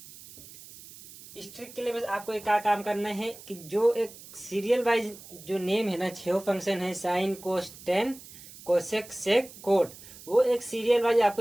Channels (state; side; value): noise; right; hiss, 18 dB below the sound